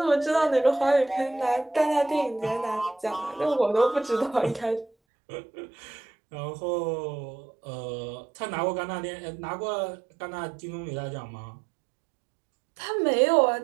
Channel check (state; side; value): drops out; left; at 4.9 s